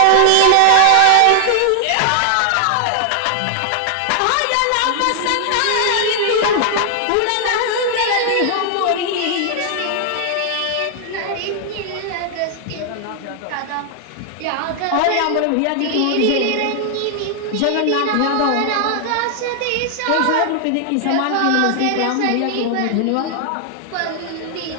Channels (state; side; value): different; both; correlation 0.00